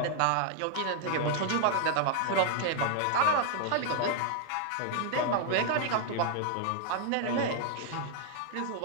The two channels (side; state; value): both; different; correlation 0.00